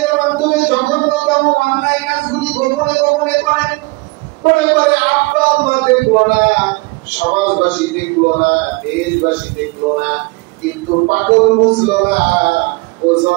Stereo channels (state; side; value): quieter; left; 25.9 dB